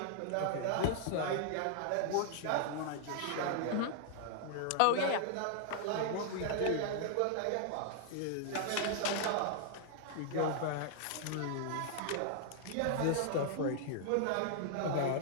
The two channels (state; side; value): different; both; correlation 0.00